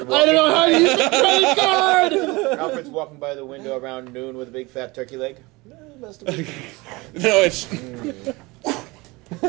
walking? I don't know how to use the credit card. Alfred's walking by the window around noon with a big fat turkey leg. No, it's...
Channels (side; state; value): left; quieter; 23.6 dB